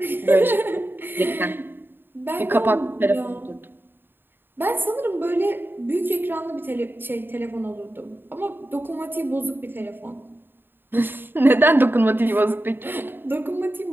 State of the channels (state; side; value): late; left; 0.098 ms